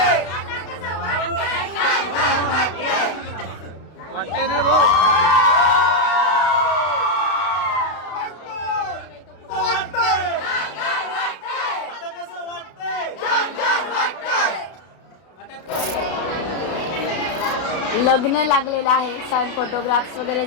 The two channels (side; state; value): right; late; 32 ms